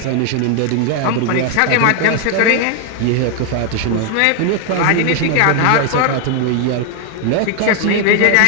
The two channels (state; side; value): different; both; correlation 0.01